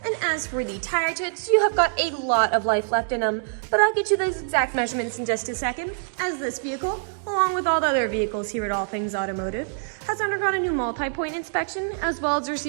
And as for the tire treads, you have got a lot of life left in them, but I'll get you those exact measurements in just a second, as this vehicle, along with all the other vehicles here at All Things Automotive, has undergone a new multi-point inspection, as well as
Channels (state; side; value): silent; left; digital silence